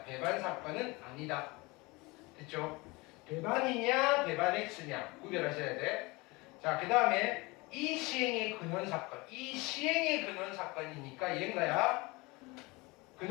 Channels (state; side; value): quieter; right; 24.3 dB